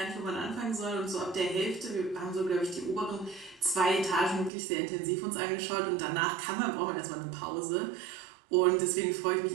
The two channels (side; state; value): left; drops out; at 4.5 s